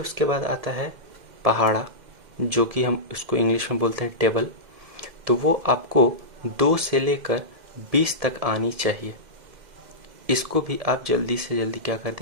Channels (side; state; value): left; late; 2.1 ms